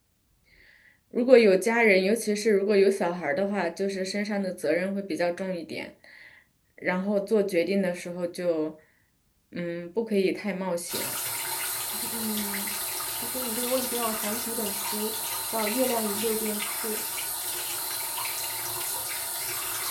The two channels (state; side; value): identical; both; correlation 1.00